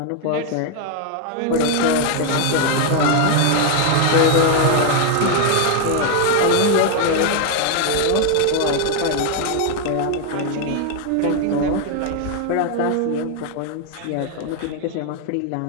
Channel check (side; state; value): both; different; correlation 0.01